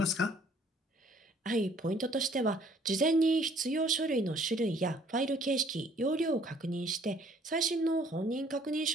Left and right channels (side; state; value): both; normal; correlation 0.59